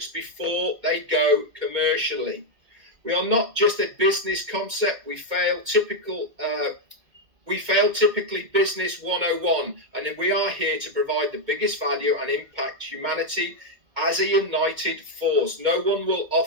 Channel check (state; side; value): late; left; 2.0 ms